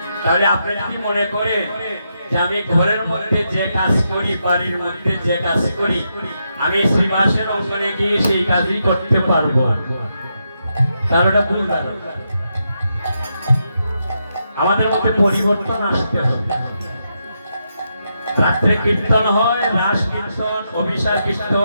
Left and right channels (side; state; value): both; inverted; correlation -0.83